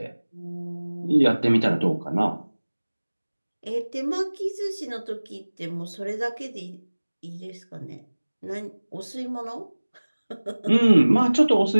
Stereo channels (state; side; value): inverted; both; correlation -1.00